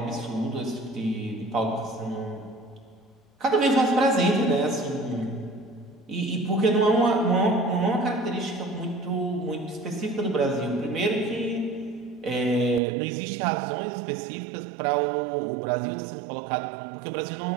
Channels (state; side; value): drops out; left; at 12.8 s